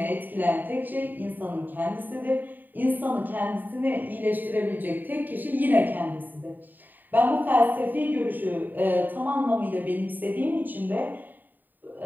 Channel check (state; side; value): late; left; 0.089 ms